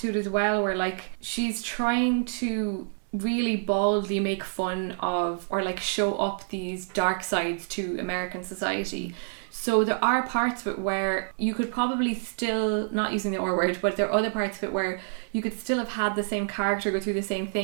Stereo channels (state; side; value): silent; left; 60 dB below the other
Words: to it as well, where like she's trying to really baldly make fun of, or like show up these dark sides to American society. So there are parts of it where you could probably still, not using the R word, but there are other parts of it where you could still have had the same character go through the same